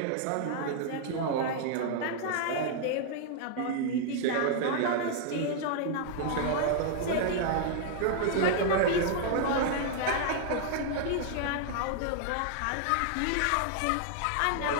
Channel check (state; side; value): different; both; correlation 0.00